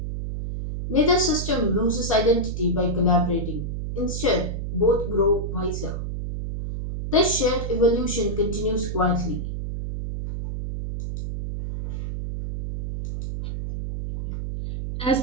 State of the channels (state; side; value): noise; right; hum, 4 dB below the sound